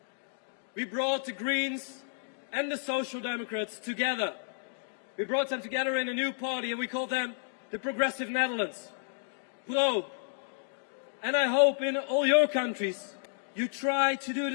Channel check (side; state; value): right; silent; digital silence